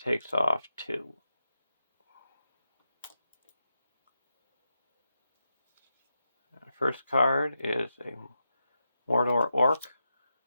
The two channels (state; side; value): inverted; both; correlation -0.87